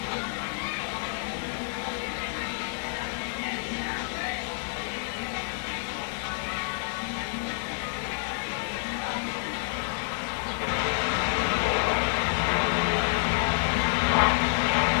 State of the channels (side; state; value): right; silent; 59 dB below the other